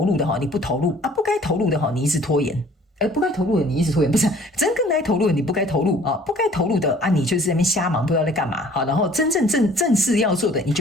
入的哈，你不投入啊，不该投入的哈，你一直拖延。不该投入的你一直拖延，不是真正该投入的你不该投入啊，不该投入的啊，你就是在那边瞎忙，不知道在干嘛好，然后真正正事要做的你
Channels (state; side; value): normal; both; correlation 0.53